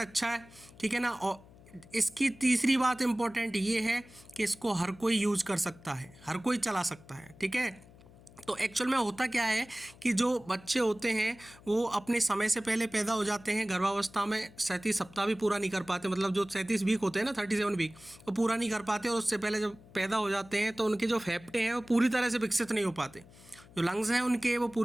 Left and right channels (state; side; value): noise; left; hum, 23 dB below the sound